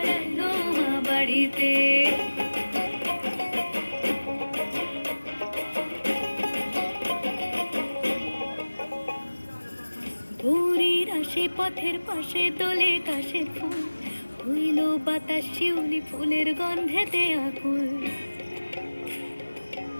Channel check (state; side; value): inverted; both; correlation -1.00